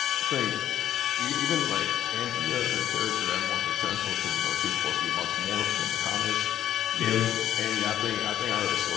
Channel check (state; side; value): quieter; right; 11.4 dB